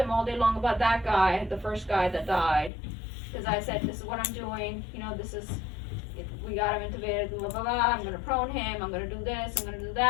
all day long about that guy, the first guy that died. Because I said, this is what I'm doing, you know, we got him intubated, blah, blah, blah, I'm going to prone him, I'm going to do this, I'm going to do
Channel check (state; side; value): drops out; right; at 2.7 s